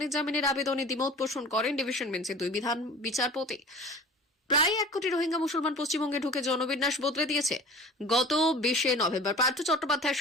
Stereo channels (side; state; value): both; normal; correlation 0.41